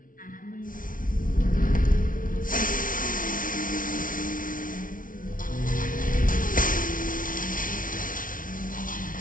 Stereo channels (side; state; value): right; late; 0.39 ms